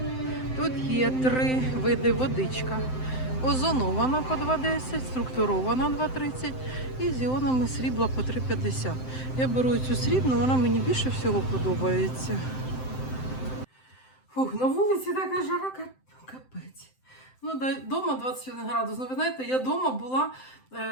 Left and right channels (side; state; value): right; late; 7.8 ms